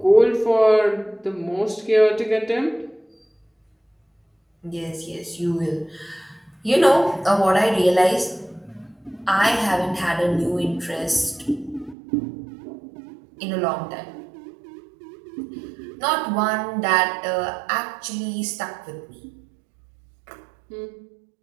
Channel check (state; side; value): drops out; left; at 12.0 s